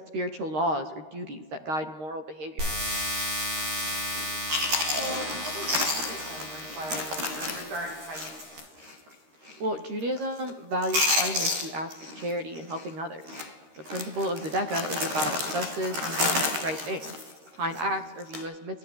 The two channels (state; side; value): late; left; 13 ms